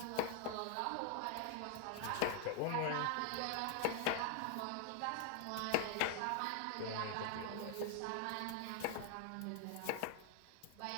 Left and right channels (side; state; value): both; different; correlation 0.00